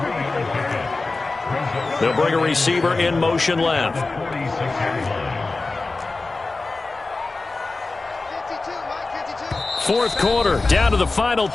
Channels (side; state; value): right; quieter; 3.5 dB